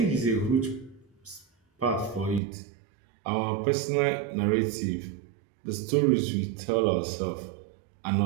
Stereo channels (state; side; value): drops out; left; at 2.4 s